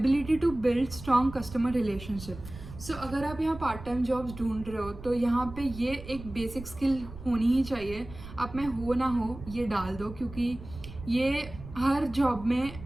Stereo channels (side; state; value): right; noise; rumble, 14 dB below the sound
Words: to build strong customer relationship. So अगर आप यहाँ पार्ट टाइम जॉब्स ढूंढ रहे हो तो यहाँ पे ये एक बेसिक स्किल होनी ही चाहिए। आप में हो ना हो ये डाल दो क्योंकि ये हर जॉब में